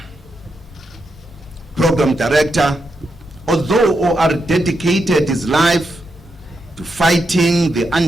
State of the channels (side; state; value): both; normal; correlation 0.84